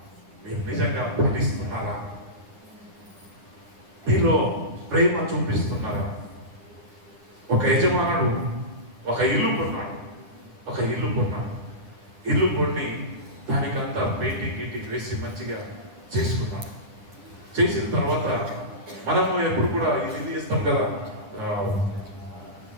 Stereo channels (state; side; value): late; left; 9.9 ms